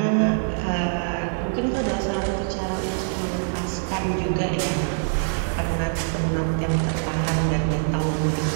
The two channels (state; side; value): silent; left; 63 dB below the other